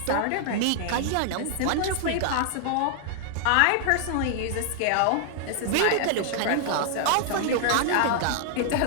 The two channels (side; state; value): both; different; correlation 0.00